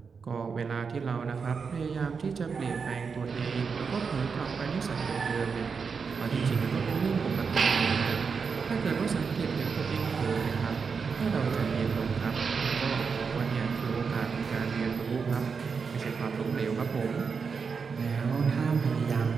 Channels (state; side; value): quieter; left; 5.5 dB